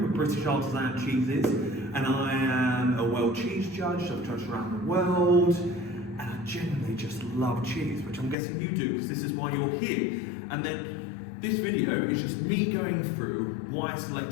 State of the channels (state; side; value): drops out; right; at 8.3 s